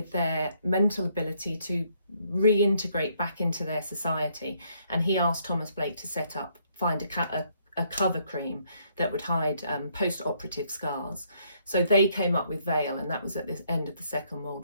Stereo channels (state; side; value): inverted; both; correlation -0.69